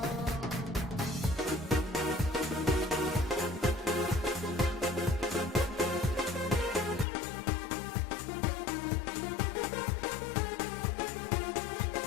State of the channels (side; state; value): right; drops out; at 7.1 s